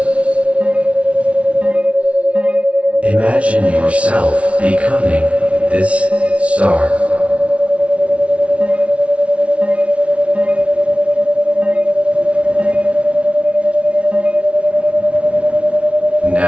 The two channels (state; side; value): late; left; 0.063 ms